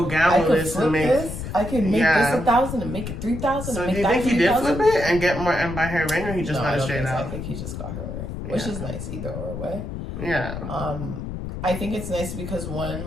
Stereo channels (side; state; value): left; noise; rumble, 7 dB below the sound